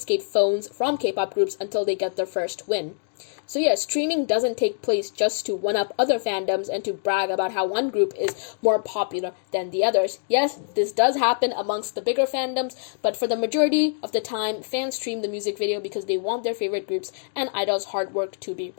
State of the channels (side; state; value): right; silent; digital silence